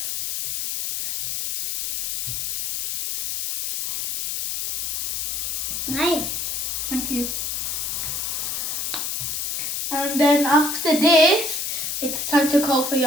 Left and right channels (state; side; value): noise; left; hiss, 2 dB below the sound